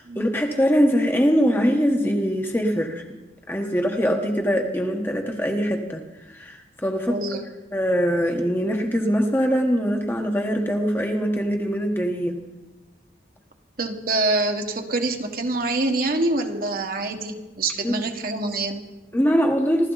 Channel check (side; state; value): both; normal; correlation 0.77